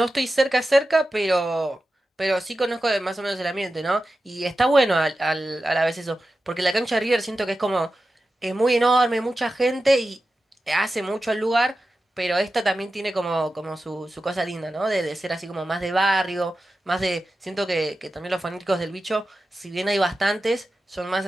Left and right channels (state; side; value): normal; both; correlation 0.93